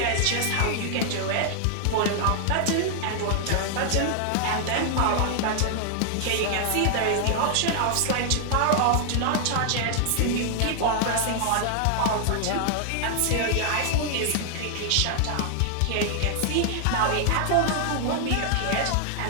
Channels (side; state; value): both; different; correlation 0.00